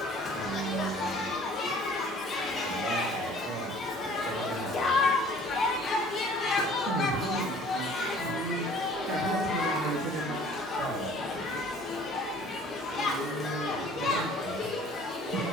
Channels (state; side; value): normal; both; correlation 0.52